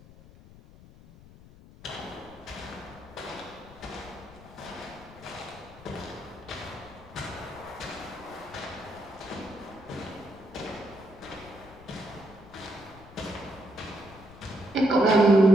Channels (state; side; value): noise; left; rumble, 20 dB below the sound